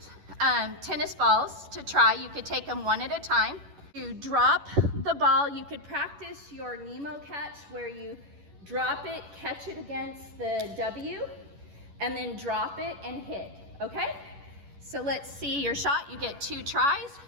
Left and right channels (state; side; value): late; left; 11 ms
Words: tennis balls to try. You could take them one at a time. You drop the ball. You could practice your Nemo catch where you drop it, catch it against the W, and then drop it and hit, okay? So let's see your shot. You get 2 tries.